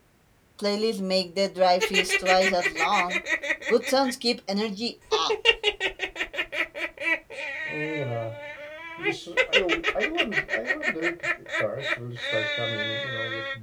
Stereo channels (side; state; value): both; identical; correlation 1.00